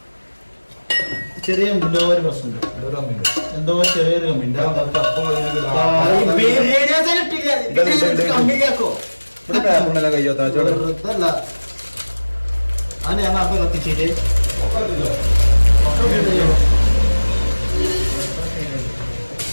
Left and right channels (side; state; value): both; inverted; correlation -1.00